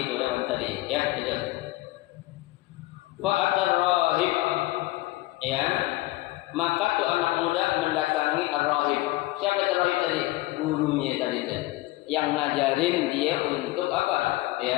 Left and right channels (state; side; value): quieter; right; 18.9 dB